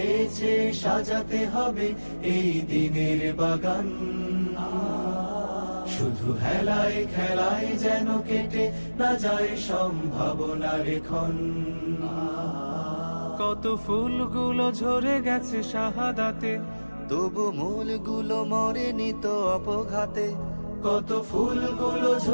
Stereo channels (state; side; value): inverted; both; correlation -1.00